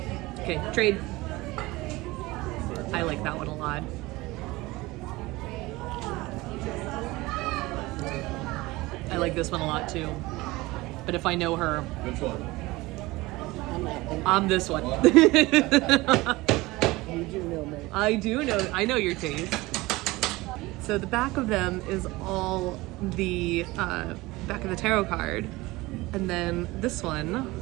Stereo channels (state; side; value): quieter; left; 20.7 dB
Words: Okay, trade. I like that one a lot. I like this one a lot too. But if I know her, Which one? I'm this one. You do know me. I know your taste. So the back of them is all the back of the tarot card. And then this one